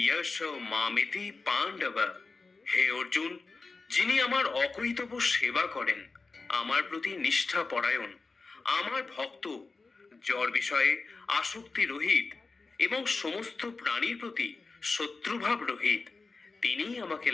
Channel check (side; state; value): right; quieter; 4.0 dB